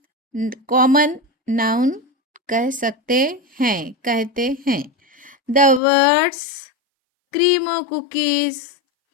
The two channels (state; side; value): drops out; right; at 5.8 s